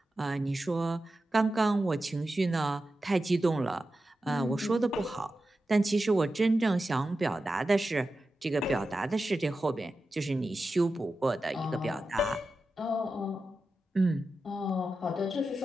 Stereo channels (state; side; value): normal; both; correlation 0.92